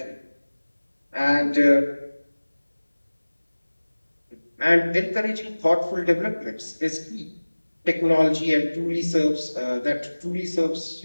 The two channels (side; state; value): both; inverted; correlation -1.00